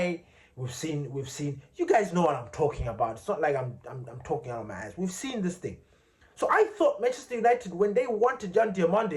We've seen. You guys know what I'm talking about. It's not like I'm talking out of my ass. We've seen this thing. So I thought Manchester United, when they wanted Yan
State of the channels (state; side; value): identical; both; correlation 1.00